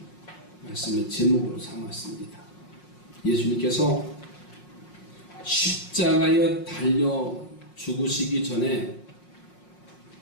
말씀의 제목으로 삼았습니다. 예수님께서 십자가에 달려 죽으시기 전에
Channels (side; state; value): right; late; 5.5 ms